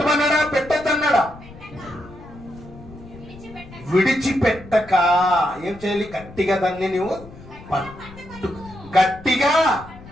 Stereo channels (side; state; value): left; noise; rumble, 18 dB below the sound